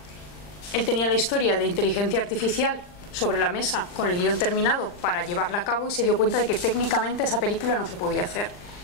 Él tenía la historia de inteligencia artificial sobre la mesa con el guión terminado para llevarla a cabo y se dio cuenta de que técnicamente esa película no se podía hacer,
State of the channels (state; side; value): late; right; 40 ms